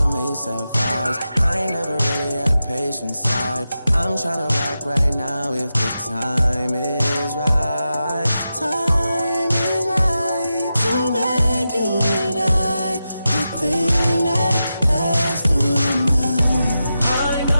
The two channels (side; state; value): both; inverted; correlation -0.91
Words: ASAP vibes. I ain't never really had a patient side. I'm trying to rock right now if the time is right. Time is right to make you and I the thing that lasts through the night. I